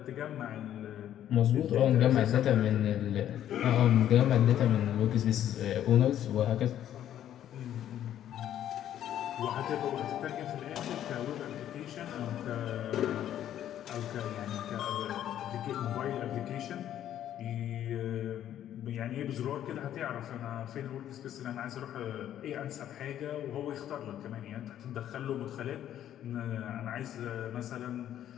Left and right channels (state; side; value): quieter; right; 11.2 dB